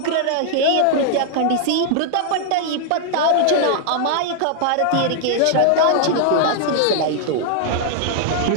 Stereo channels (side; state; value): both; different; correlation 0.00